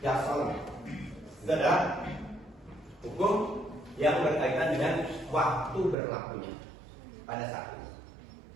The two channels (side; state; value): left; drops out; at 6.0 s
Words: dastolan. Itu adalah hukum yang berkaitan dengan waktu berlakunya pada saat ini.